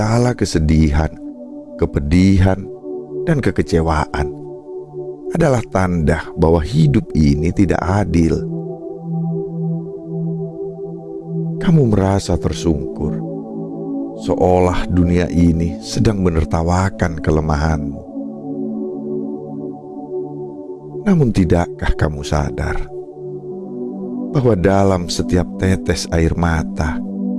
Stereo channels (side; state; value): both; identical; correlation 1.00